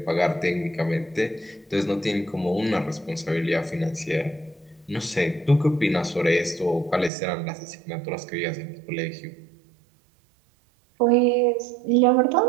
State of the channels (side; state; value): left; drops out; at 7.1 s